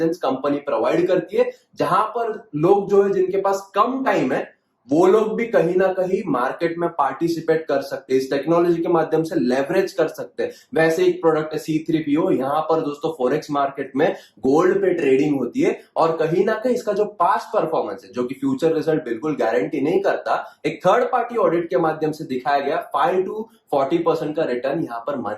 कंपनी प्रोवाइड करती है, जहां पर लोग जो है जिनके पास कम टाइम है वो लोग भी कहीं ना कहीं मार्केट में पार्टिसिपेट कर सकते हैं, इस टेक्नोलॉजी के माध्यम से लेवरेज कर सकते हैं। वैसे एक प्रोडक्ट है C3PO, यहाँ पर दोस्तों फॉरेक्स मार्केट में गोल्ड पे ट्रेडिंग होती है, और कहीं ना कहीं इसका जो पास्ट परफॉर्मेंस है, जो कि फ्यूचर रिजल्ट बिल्कुल गारंटी नहीं करता, एक थर्ड पार्टी ऑडिट के माध्यम से दिखाया गया 5 to 40% का रिटर्न यहाँ पर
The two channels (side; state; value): both; identical; correlation 1.00